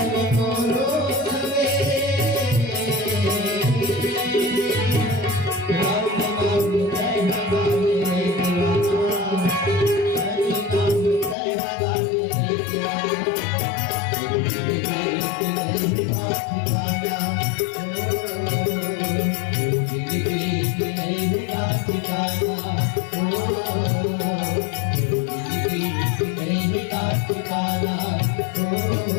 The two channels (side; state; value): right; drops out; at 11.4 s